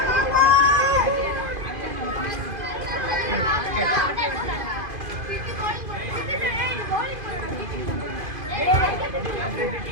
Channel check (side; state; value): left; late; 2.5 ms